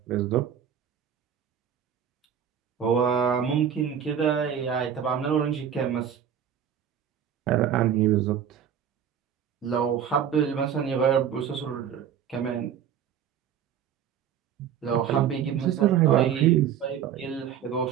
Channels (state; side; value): quieter; left; 8.8 dB